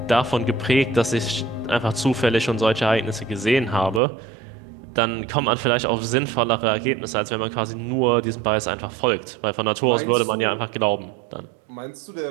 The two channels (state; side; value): drops out; left; at 4.0 s